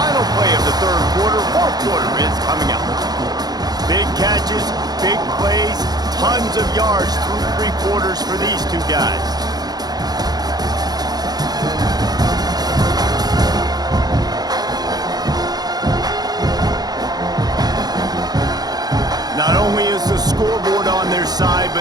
play of the 3rd quarter. 4th quarter is coming up. Big catches, big plays, tons of yards through 3 quarters for these two guys. Not only is the scoreboard on their side,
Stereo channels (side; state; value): left; late; 0.19 ms